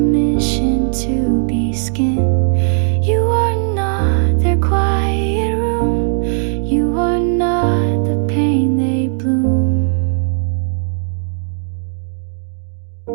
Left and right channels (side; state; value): left; silent; digital silence